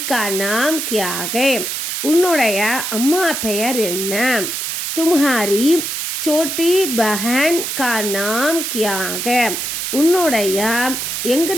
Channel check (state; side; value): noise; right; hiss, 3 dB below the sound